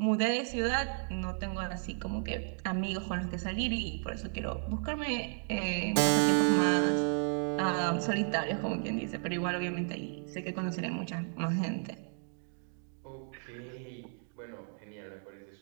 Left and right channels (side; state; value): left; silent; 55 dB below the other